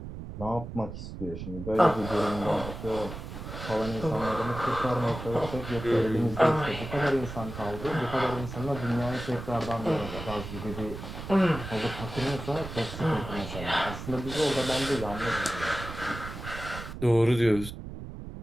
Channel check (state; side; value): noise; right; rumble, 9 dB below the sound